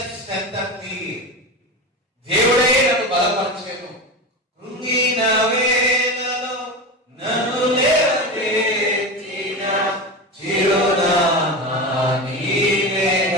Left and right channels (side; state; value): both; normal; correlation 0.23